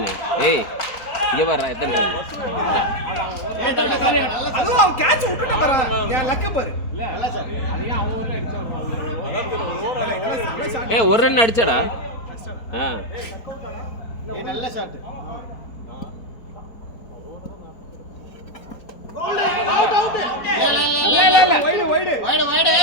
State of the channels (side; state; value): right; late; 3.9 ms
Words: ஏய் இங்க வர்றா, எத்தனை ரன்? அதுவும் அவன் கேட்ச் விட்டுட்டு வரான். என் லக் பாரு. நல்லா சார் அதையும் அவன் ஊர்ல அடிச்சு ஏய் ஒரு ரன் அடிச்சடா. நல்ல ஷாட்.